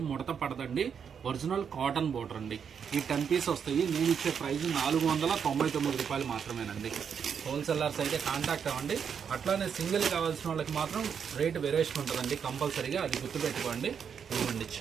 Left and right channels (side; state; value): left; quieter; 7.2 dB